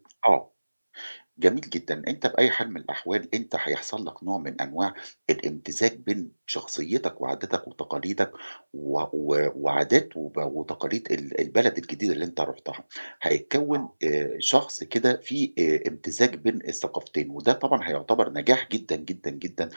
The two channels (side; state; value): both; inverted; correlation -1.00